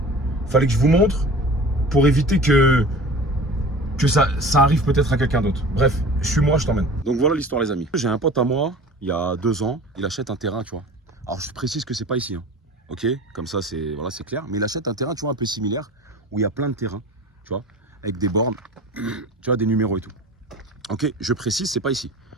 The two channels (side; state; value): both; normal; correlation 0.39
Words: montre. Pour éviter que ça arrive peut-être à quelqu'un d'autre. Bref, suis-moi, je t'emmène. Donc voilà l'histoire, les amis. J'ai un pote à moi, il y a 2 ans, il achète un terrain, tu vois. Alors, je précise que c'est pas ici, hein. Ok, comme ça, c'est clair. Mais il achète un terrain, tu vois, un peu similaire, où il y a plein de terrains, tu vois, avec des bornes, tu vois, des numéros et tout. Ok, je précise, c'est pas ici.